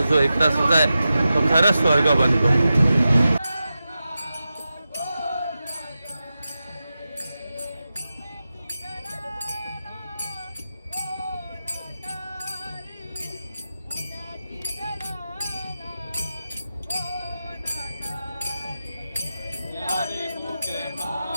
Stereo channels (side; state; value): both; inverted; correlation -0.92